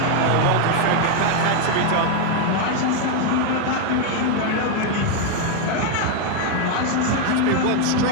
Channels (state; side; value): different; both; correlation 0.01